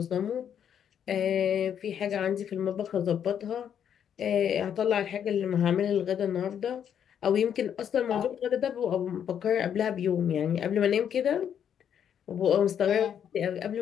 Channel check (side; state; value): right; quieter; 8.8 dB